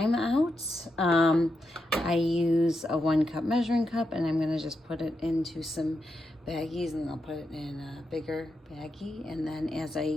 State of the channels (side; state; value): both; normal; correlation 0.85